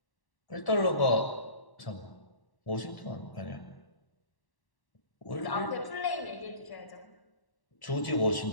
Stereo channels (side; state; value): right; late; 1.1 ms